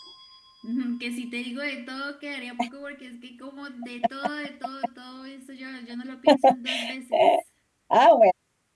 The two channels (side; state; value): both; identical; correlation 1.00